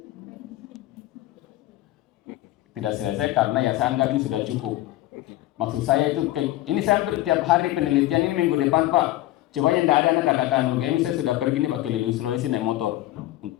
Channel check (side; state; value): right; quieter; 15.9 dB